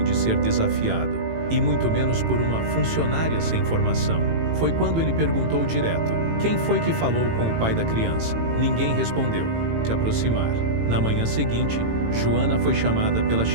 de ser desafiado, e muito menos por uma funcionária sem formação. Foi quando ele perguntou direto: quem foi que falou com o pai da criança? Ninguém respondeu. Se aproximar. Na manhã seguinte, Joana foi chamada pela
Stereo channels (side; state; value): left; late; 18 ms